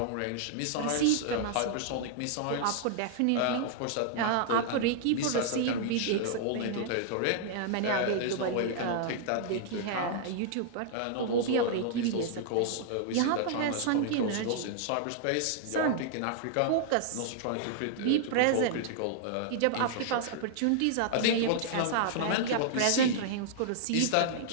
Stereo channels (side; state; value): both; different; correlation -0.01